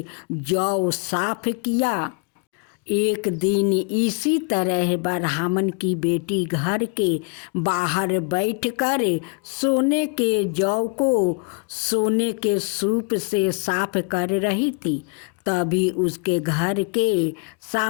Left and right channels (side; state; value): right; quieter; 34.4 dB